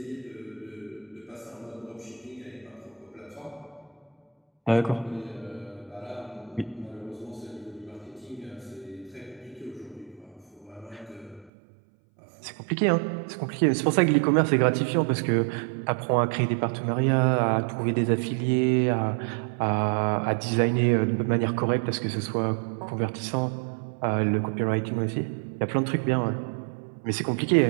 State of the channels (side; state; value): left; drops out; at 11.5 s